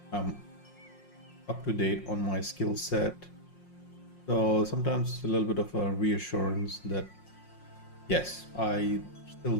I'm up to date on my skill set. So sometimes it's a little bit of a reassurance that yes, I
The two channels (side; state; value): right; late; 5.6 ms